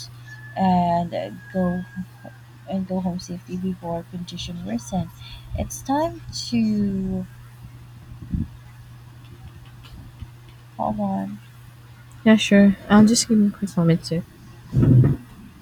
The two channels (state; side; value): identical; both; correlation 1.00